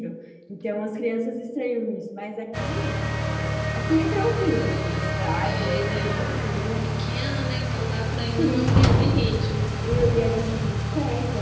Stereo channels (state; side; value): identical; both; correlation 1.00